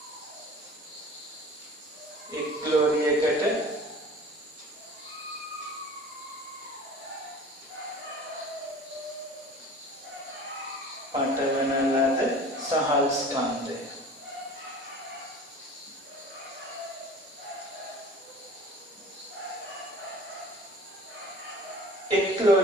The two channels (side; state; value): both; normal; correlation 0.42